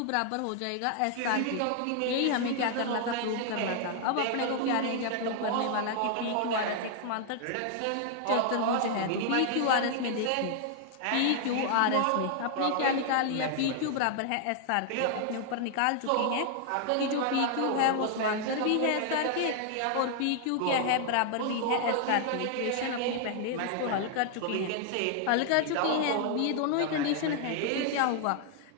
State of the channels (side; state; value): both; different; correlation 0.00